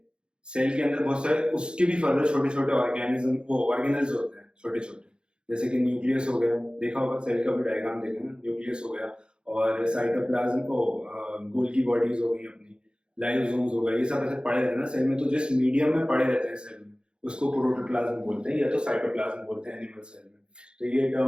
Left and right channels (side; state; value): left; late; 0.052 ms